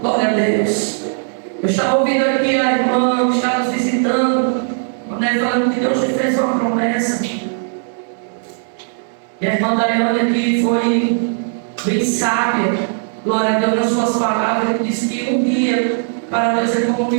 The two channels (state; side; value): silent; left; digital silence